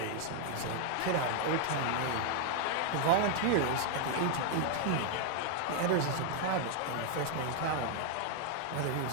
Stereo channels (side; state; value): both; different; correlation 0.00